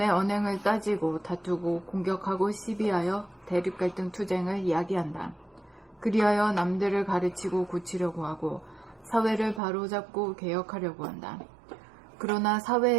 언행을 따지고 다투고 공격하고 시비하여 대립갈등 투쟁을 이야기한다. 그리하여 남들을 가르치고 고치려고 하고 사회를 바로잡고 개혁하려고 한다. 그러나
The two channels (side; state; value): left; drops out; at 9.6 s